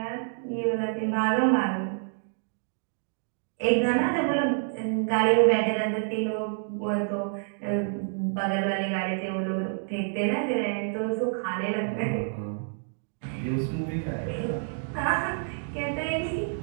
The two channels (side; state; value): left; silent; digital silence